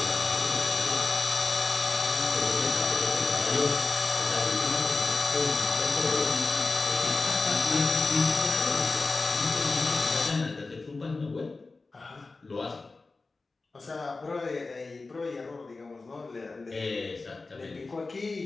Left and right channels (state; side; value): quieter; right; 3.7 dB